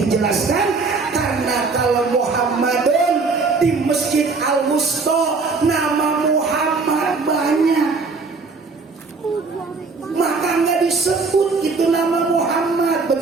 dijelaskan karena kalau Muhammadun di Masjid Al-Wusta nama Muhammad banyak, maka nggak disebut itu nama Muhammad.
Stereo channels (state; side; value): quieter; left; 4.3 dB